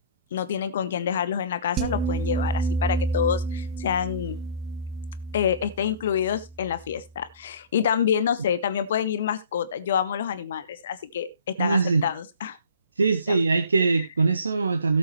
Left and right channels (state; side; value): inverted; both; correlation -0.48